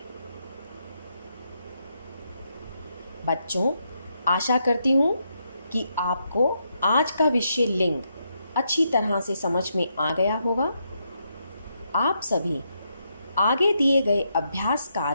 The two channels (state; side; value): inverted; both; correlation -0.80